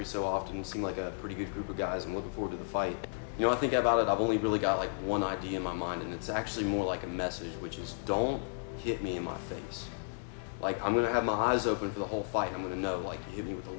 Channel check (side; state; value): right; silent; digital silence